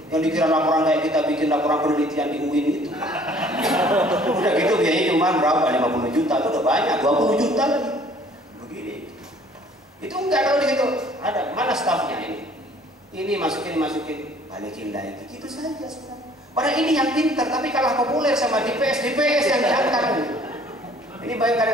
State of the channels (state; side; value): normal; both; correlation 0.56